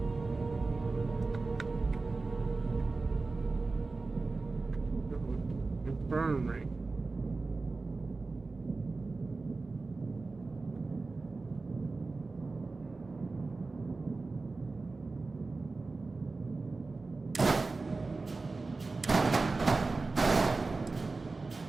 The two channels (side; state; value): left; quieter; 3.7 dB